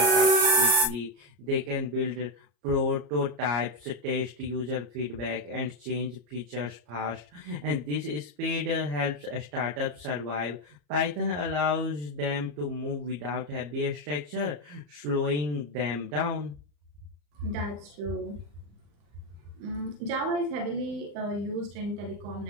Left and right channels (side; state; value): left; late; 34 ms